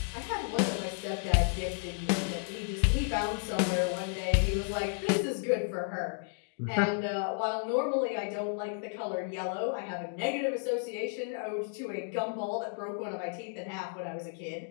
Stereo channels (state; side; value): silent; right; 56 dB below the other